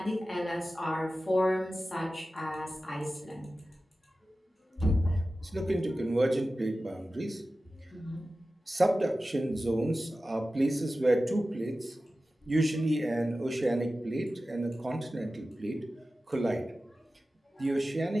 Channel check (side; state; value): both; normal; correlation 0.95